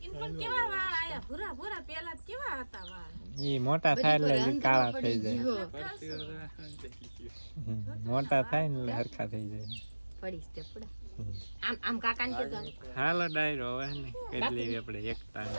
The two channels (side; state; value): both; inverted; correlation -1.00